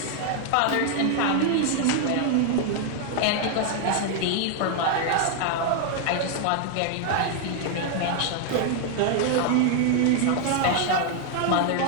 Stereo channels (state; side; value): different; both; correlation 0.00